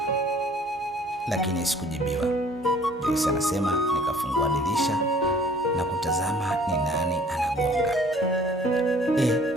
Lakini sikujibiwa. Joyce anasema nikafungua dirisha na kutazama ni nani anagonga.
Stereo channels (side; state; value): both; normal; correlation 0.54